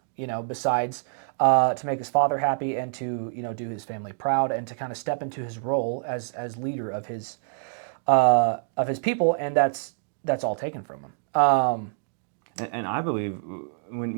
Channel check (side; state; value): left; silent; digital silence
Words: besides to make his father happy and to, do his family proud and to kind of step into his role as leader of his people, and that's all taken from him. And I believe